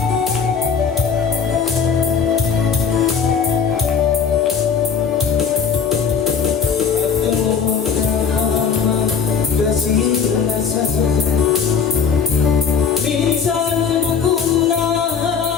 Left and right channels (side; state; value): right; quieter; 6.3 dB